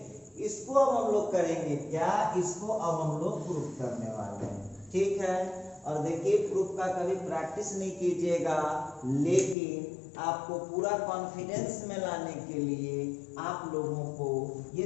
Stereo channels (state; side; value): drops out; right; at 9.6 s